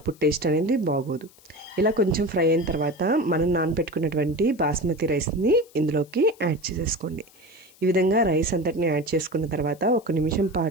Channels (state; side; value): noise; left; hiss, 27 dB below the sound